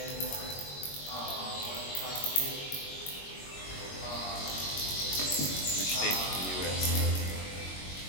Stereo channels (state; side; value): late; right; 21 ms